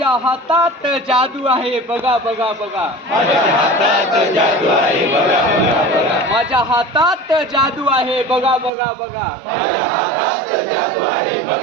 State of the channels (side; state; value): left; drops out; at 8.7 s